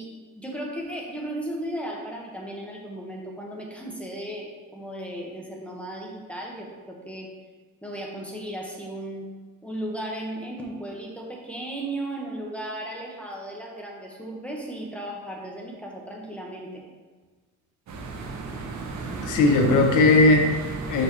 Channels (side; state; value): both; normal; correlation 0.02